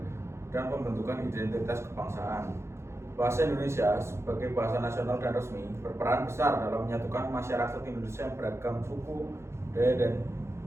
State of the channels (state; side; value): late; left; 0.13 ms